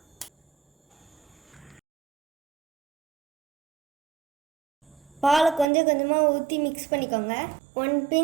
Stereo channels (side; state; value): left; drops out; at 5.7 s